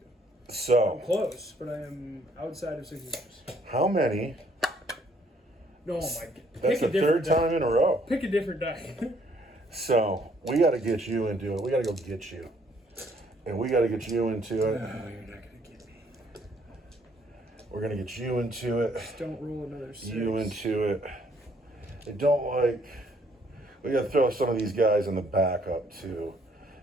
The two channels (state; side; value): normal; both; correlation 0.65